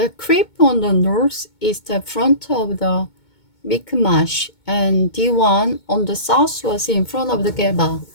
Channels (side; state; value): right; late; 2.2 ms